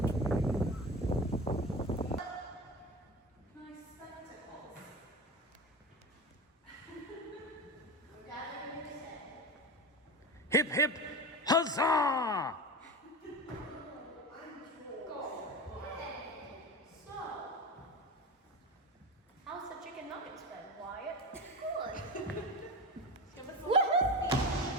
Hip, hip, huzzah! How's the chicken nuggets been, Wyatt?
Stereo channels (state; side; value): normal; both; correlation 0.25